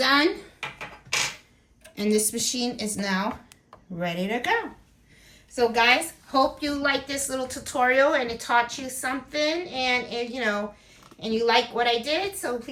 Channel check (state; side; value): identical; both; correlation 1.00